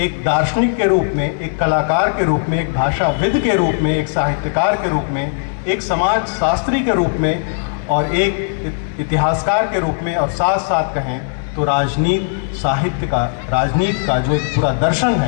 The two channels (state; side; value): silent; right; 63 dB below the other